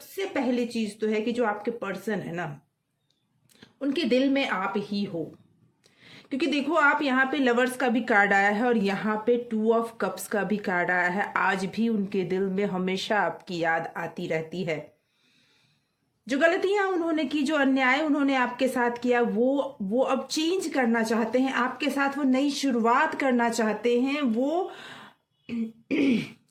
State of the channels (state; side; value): identical; both; correlation 1.00